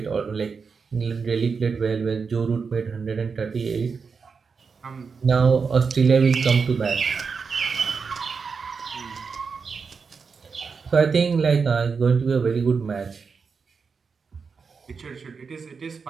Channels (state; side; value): quieter; left; 5.3 dB